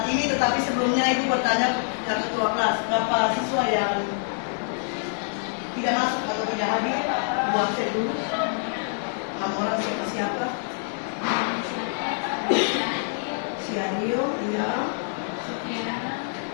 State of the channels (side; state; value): right; silent; 61 dB below the other